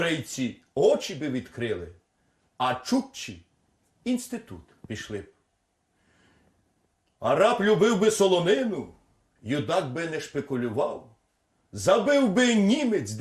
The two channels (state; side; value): identical; both; correlation 1.00